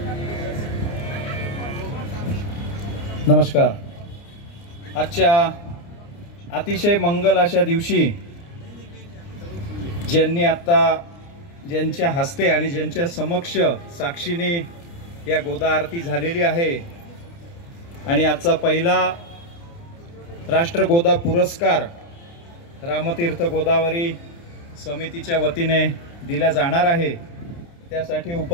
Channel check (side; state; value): right; late; 29 ms